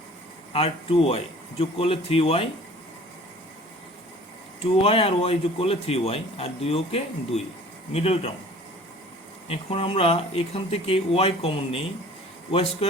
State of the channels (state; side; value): normal; both; correlation 0.48